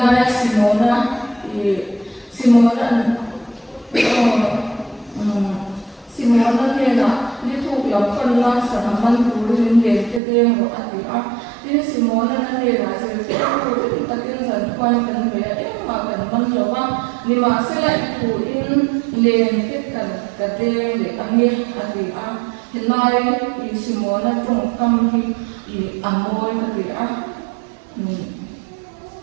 Simona ni nak itu yang pernah sahaman turun yang kita mau ada. Ini Simona ni lah sesuatu itu kita kan kuatkan bayar makan menjawab ni masalah itu ini kita kadang le angin ada. Hilai Simona tungkam di amoy ada.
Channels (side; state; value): left; drops out; at 10.2 s